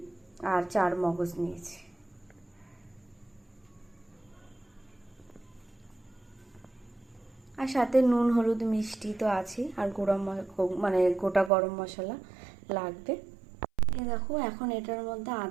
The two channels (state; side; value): drops out; left; at 11.5 s